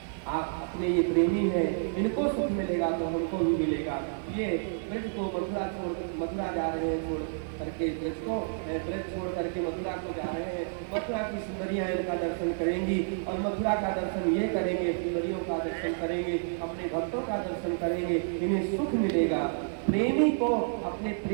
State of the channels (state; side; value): silent; left; digital silence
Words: आप अपने ये प्रेमी हैं, इनको सुख मिलेगा तो हमको भी मिलेगा। ये ब्रज को मथुरा जा रहे हैं, छोड़ करके ब्रज को, ब्रज छोड़ करके मथुरा को जा रहे हैं। मथुरा की सुंदरियां इनका दर्शन करेंगी और मथुरा का दर्शन ये करेंगे, सुंदरियों का दर्शन करेंगे, अपने भक्तों का दर्शन करेंगे, इन्हें सुख मिलेगा। प्रेमी को अपने